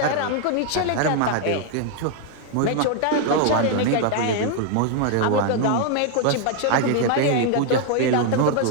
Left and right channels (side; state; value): both; different; correlation 0.00